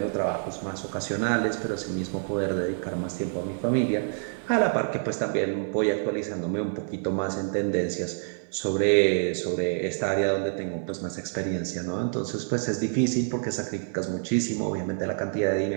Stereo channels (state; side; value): silent; left; 60 dB below the other